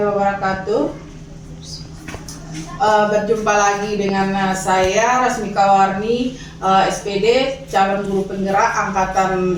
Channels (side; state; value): both; identical; correlation 1.00